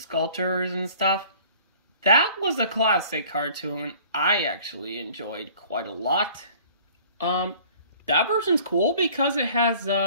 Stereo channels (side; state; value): both; inverted; correlation -0.50